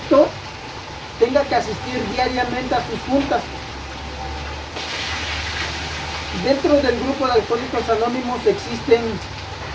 tenga que asistir diariamente a sus juntas. Dentro del grupo de alcohólicos anónimos existen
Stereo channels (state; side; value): identical; both; correlation 1.00